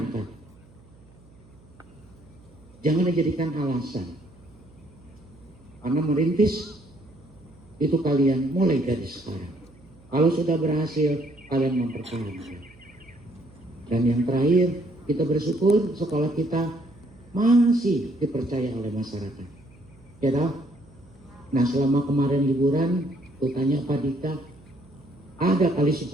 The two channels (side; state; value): right; noise; hum, 26 dB below the sound